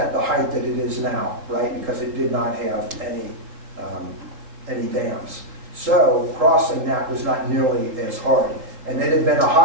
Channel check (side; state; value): left; late; 3.8 ms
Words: the height that it is now, right? Because it did not have any dams. So crossing that was not nearly as hard. And it had been a